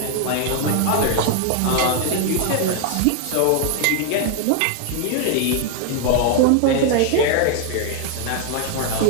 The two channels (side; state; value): both; different; correlation 0.00